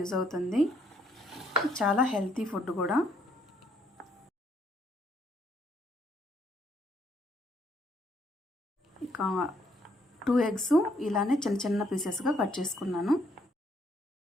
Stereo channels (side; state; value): both; normal; correlation 0.69